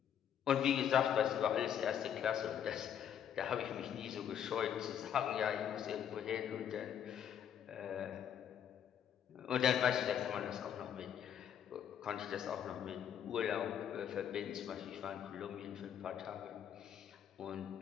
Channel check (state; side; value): quieter; right; 9.2 dB